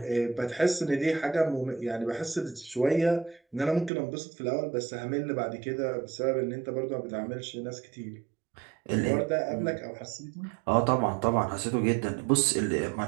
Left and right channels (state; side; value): drops out; left; at 3.9 s